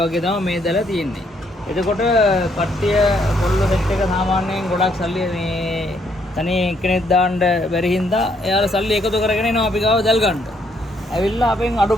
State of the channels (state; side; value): normal; both; correlation 0.71